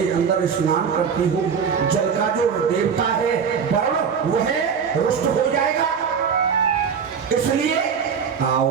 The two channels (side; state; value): left; quieter; 6.7 dB